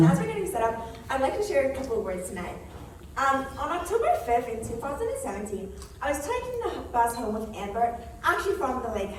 as we're getting set up, I'd like to share a couple of words tonight. On October 5th in 2017, I was taking the bus home with Amber, actually from the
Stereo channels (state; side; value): identical; both; correlation 1.00